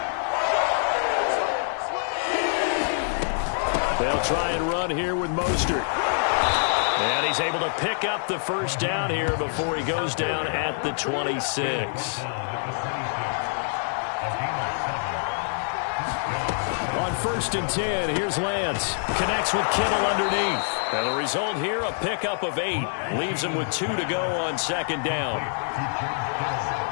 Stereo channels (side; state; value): right; silent; digital silence